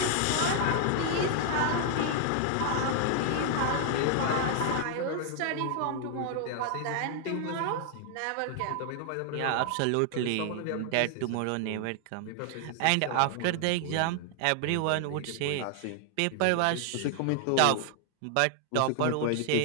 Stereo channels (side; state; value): both; different; correlation 0.00